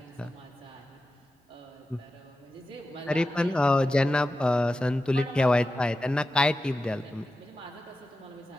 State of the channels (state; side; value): normal; both; correlation 0.92